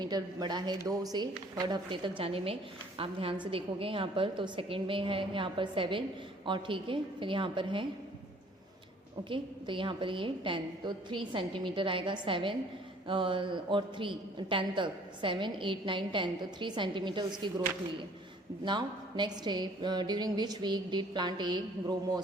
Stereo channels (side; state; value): both; normal; correlation 0.56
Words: बड़ा है 2 से 3rd हफ्ते तक जाने में. आप ध्यान से देखोगे यहाँ पर तो 2nd में है यहाँ पर 7 और ठीक है फिर यहाँ पर है ओके तो यहाँ पर ये 10 तो 3 सेंटीमीटर आएगा. 7 और 3 10 तक 7 8 9 10 तो 3 सेंटीमीटर उसकी ग्रोथ हुई है. नाउ नेक्स्ट है during which week did plant A grow